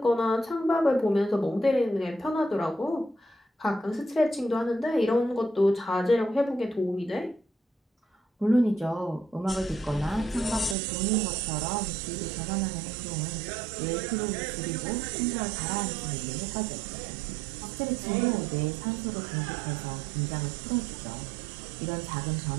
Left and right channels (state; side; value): drops out; left; at 10.8 s